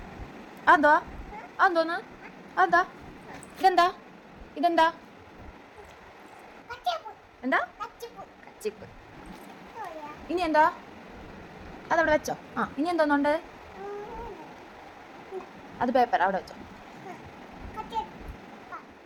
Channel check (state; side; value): identical; both; correlation 1.00